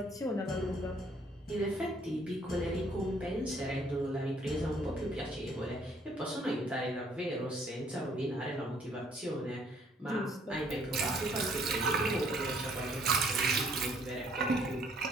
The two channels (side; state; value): both; normal; correlation 0.63